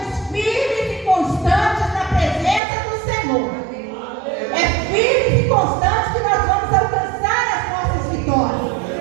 firmes e constantes na presença do Senhor. É firmes e constantes que nós vamos alcançar as nossas vitórias.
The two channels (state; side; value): drops out; left; at 2.6 s